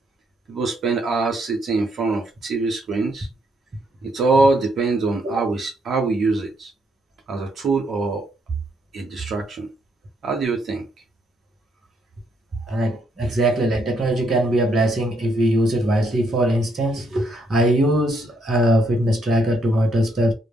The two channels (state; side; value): normal; both; correlation 0.74